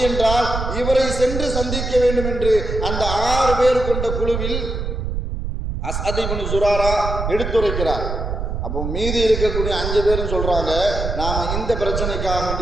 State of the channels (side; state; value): right; noise; rumble, 3 dB below the sound